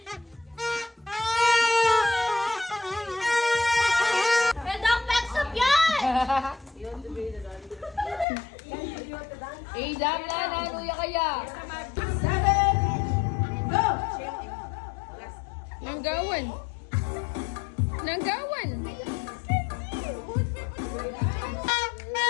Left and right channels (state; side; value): drops out; right; at 8.2 s